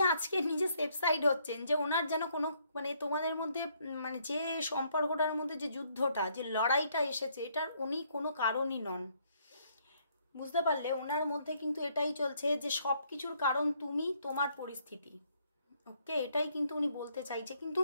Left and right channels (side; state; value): both; inverted; correlation -0.70